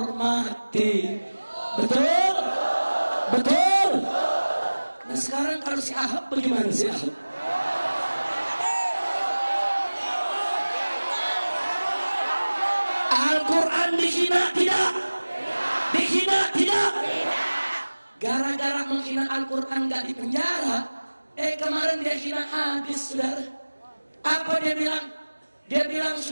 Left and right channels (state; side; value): inverted; both; correlation -1.00